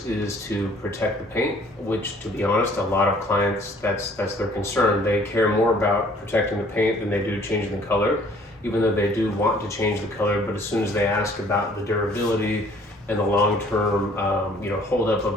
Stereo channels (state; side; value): normal; both; correlation 0.57